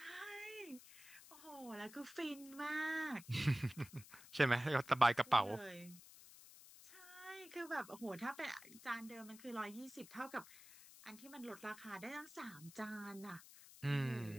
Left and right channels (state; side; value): noise; left; hiss, 18 dB below the sound